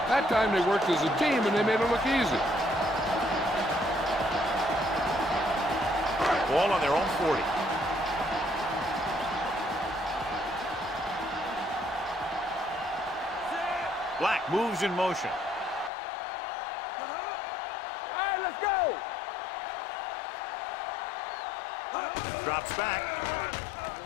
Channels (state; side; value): drops out; right; at 15.9 s